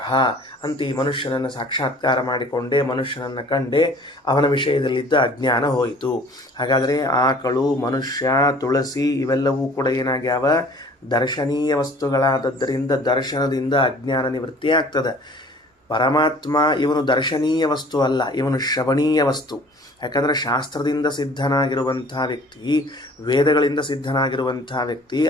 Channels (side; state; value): both; normal; correlation 0.50